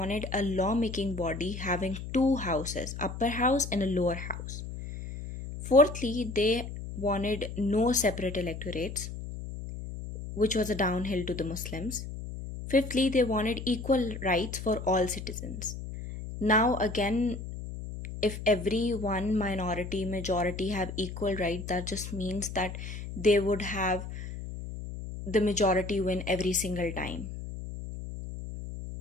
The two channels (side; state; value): left; noise; hum, 8 dB below the sound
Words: a lawmaking body having 2 houses, upper house and a lower house. Fourthly, they wanted no separate electorates, which was a downhill to the Muslims. Fifthly, they wanted equal rights for all citizens. Now again, if every one minority, majority have equal right, that just means that they would have the majority win every single time.